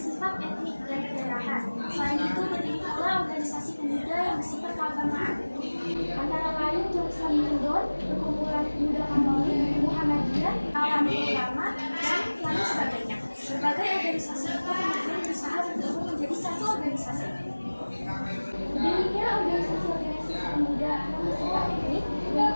etnik dan kedaerahan. Selain itu, berdiri pula organisasi pemuda yang bersifat keagamaan. Antara lain Jong Samindon, Perkumpulan Pemuda Katolik, Muhammadiyah, Alami Ulama, dan lain sebagainya. Berbagai organisasi itu kemudian berusaha bergabung menjadi satu organisasi. Berdirinya organisasi-organisasi pemuda yang bersifat etnik dan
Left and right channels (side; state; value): both; inverted; correlation -1.00